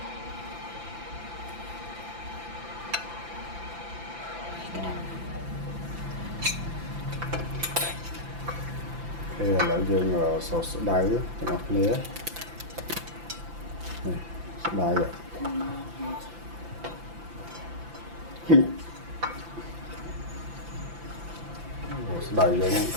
thì là dương sốt đáy cho nó nế này sốt đáy vậy sốt đáy vậy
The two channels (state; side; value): late; left; 5.9 ms